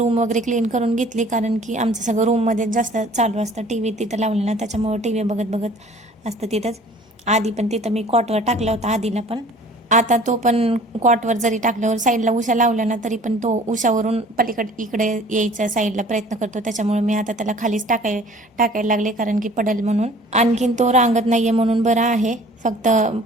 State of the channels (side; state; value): both; normal; correlation 0.50